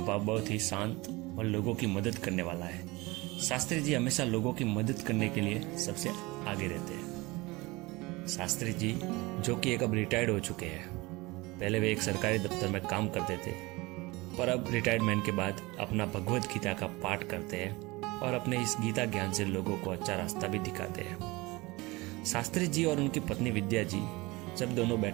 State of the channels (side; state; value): left; quieter; 22.9 dB